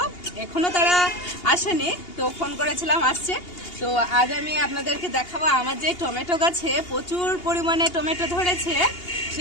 এখনও তারা আসেনি, তো ফোন করেছিলাম আসছে। তো আজ আমি আপনাদেরকে দেখাবো আমার যে টমেটো গাছে প্রচুর পরিমাণে টমেটো ধরেছে,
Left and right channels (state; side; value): late; right; 2.8 ms